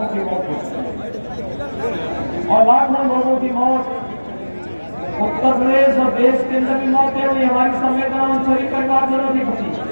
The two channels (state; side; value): inverted; both; correlation -1.00